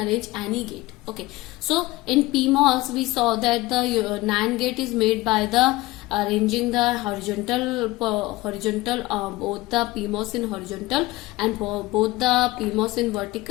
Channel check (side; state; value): right; quieter; 19.5 dB